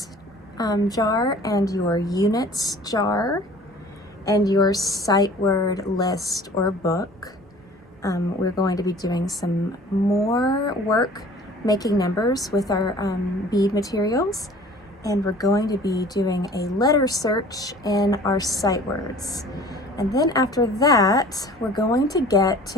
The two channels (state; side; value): normal; both; correlation 0.47